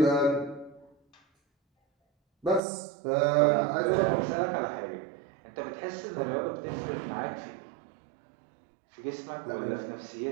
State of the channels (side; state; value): left; drops out; at 2.6 s